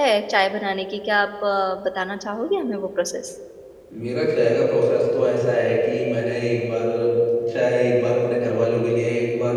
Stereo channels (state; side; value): identical; both; correlation 1.00